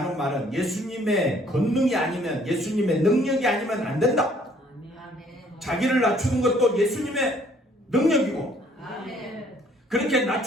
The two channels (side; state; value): both; normal; correlation 0.61